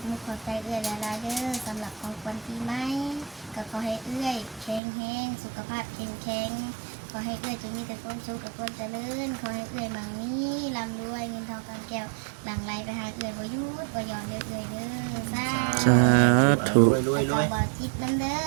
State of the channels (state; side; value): drops out; left; at 4.8 s